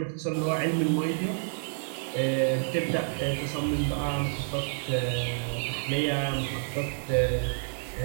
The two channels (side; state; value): left; silent; 59 dB below the other